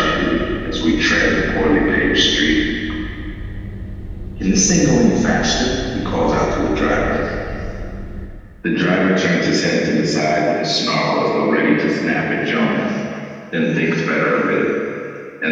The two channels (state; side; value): identical; both; correlation 1.00